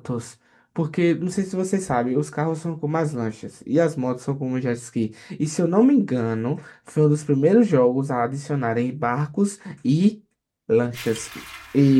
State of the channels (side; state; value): both; identical; correlation 1.00